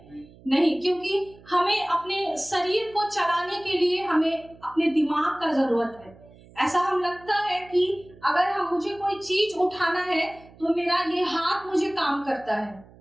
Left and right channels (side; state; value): right; noise; hum, 24 dB below the sound